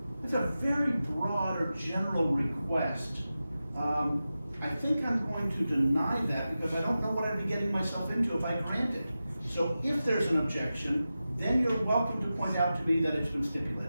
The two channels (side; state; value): both; inverted; correlation -0.93